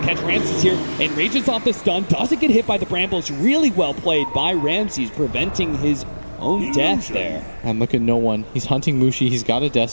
to catch Ramses here, and rages off the stun, doesn't get hit by the brambles. Really well played by Ramses, preventing his own death there. And look at no one. He's hunting Mushi. He's got a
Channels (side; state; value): both; inverted; correlation -1.00